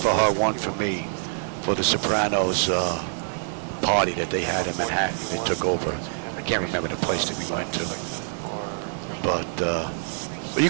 for her, one for me, for the Sopranos party that they had in Manhattan. They took over. I can't remember the place that we went to, but you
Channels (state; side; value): silent; left; digital silence